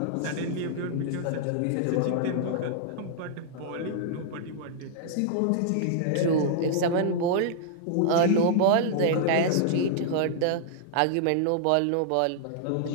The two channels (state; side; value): different; both; correlation -0.01